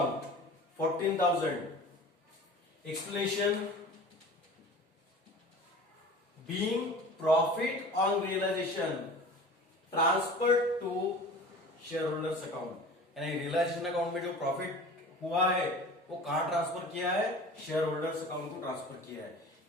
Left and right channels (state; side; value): normal; both; correlation 0.40